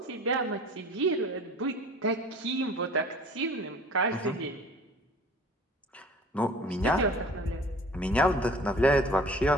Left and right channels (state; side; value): normal; both; correlation 0.47